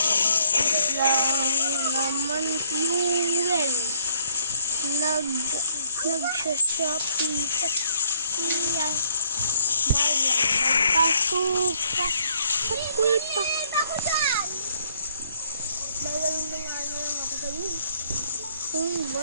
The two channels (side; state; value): both; inverted; correlation -0.64